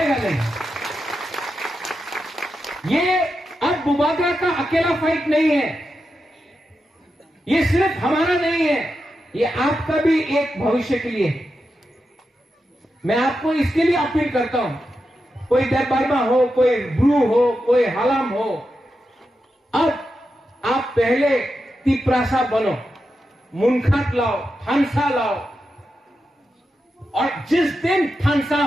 नहीं। ये अब बुबागरा का अकेला फाइट नहीं है, ये सिर्फ हमारा नहीं है, ये आपका भी एक भविष्य के लिए है। मैं आपको इसके लिए अपील करता हूं, कोई देवबर्मा हो, कोई ब्रू हो, कोई हलाम हो, अब आप पहले तिपरासा बनो, मुनखात लाओ, थानसा लाओ, और जिस दिन थानसा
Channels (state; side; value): normal; both; correlation 0.88